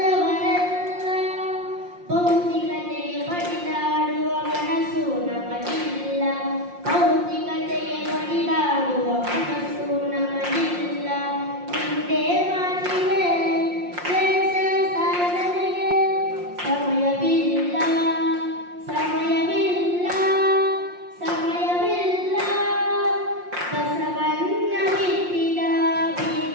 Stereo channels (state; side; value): late; left; 5.6 ms